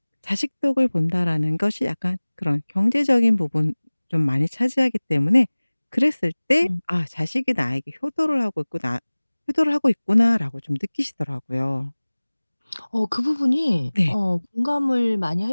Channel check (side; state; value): both; inverted; correlation -1.00